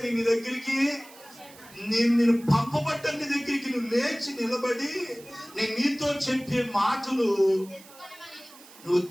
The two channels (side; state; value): right; noise; hiss, 21 dB below the sound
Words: నీ దగ్గరికి నేను పంపబడ్డ నీ దగ్గరికి నువ్వు లేచి నిలబడి నేను నీతో చెప్పే మాటలు నువ్వు